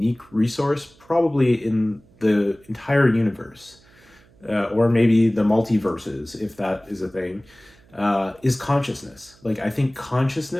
resource probably in the entire universe, or maybe the multiverses, if that is a thing, is consciousness. Like I think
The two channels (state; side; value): noise; right; hum, 29 dB below the sound